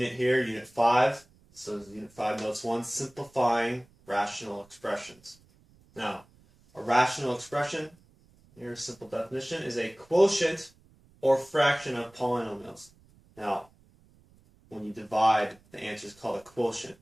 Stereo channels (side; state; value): right; noise; rumble, 29 dB below the sound